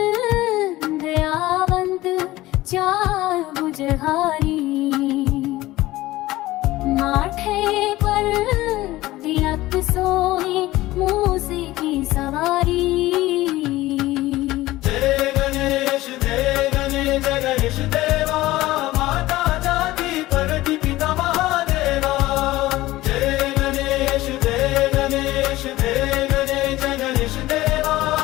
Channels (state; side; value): quieter; right; 17.4 dB